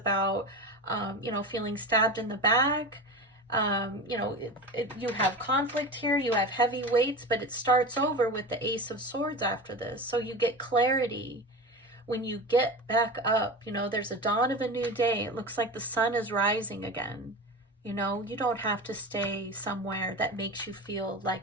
feeling stabbed in the back. You have conflict here. You have heavy weights, but it starts over with the Ace of Swords after this. So you get clarity. When you get back up, there's a dawn of a new day. It looks like the sun is rising again. You don't have to stay somewhere that makes you feel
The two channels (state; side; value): normal; both; correlation 0.28